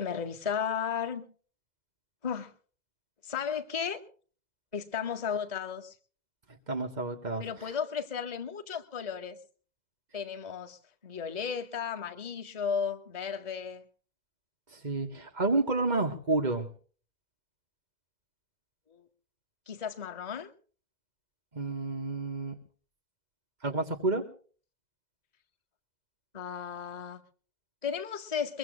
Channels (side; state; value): left; late; 2.0 ms